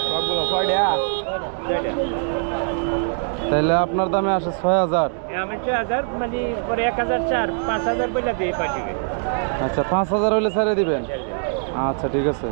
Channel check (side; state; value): left; silent; digital silence